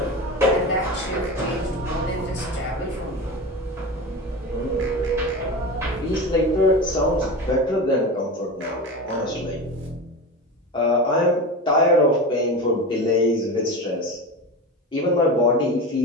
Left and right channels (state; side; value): normal; both; correlation 0.26